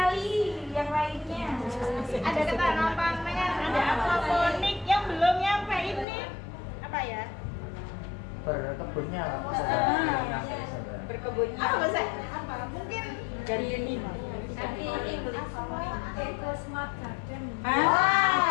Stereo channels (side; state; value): right; drops out; at 6.1 s